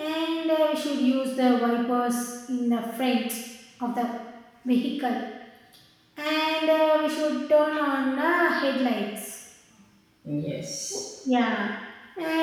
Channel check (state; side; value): identical; both; correlation 1.00